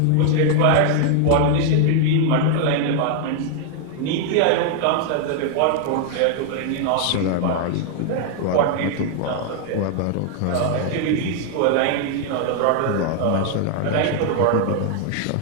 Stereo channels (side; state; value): both; different; correlation 0.00